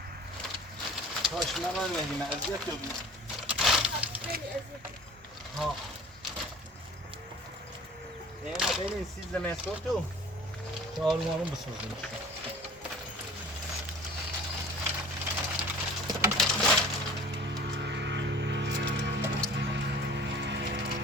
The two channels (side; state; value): both; normal; correlation 0.45